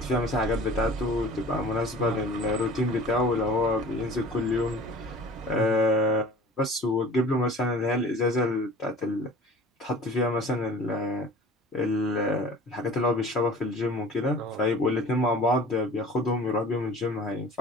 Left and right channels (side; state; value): both; normal; correlation 0.43